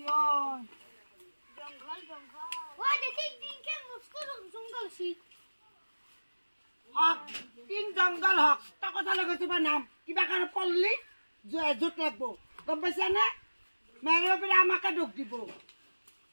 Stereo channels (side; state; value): both; inverted; correlation -1.00